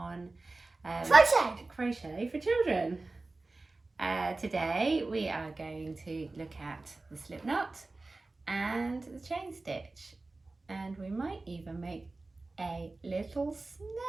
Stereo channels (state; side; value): quieter; left; 3.3 dB